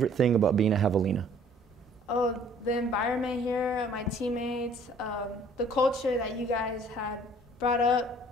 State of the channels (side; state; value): both; normal; correlation 0.56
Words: thing about being a Javelina? Oh, the environment here, my teammates, the culture that you guys had brought